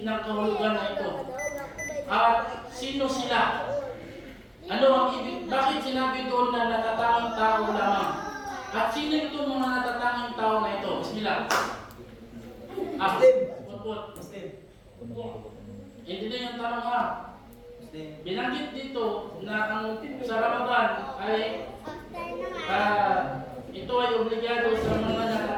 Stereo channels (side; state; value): both; identical; correlation 1.00